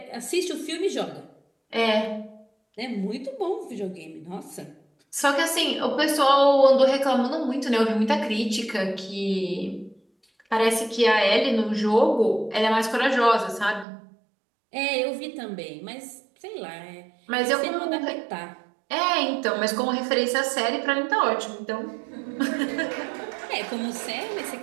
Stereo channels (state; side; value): drops out; left; at 13.9 s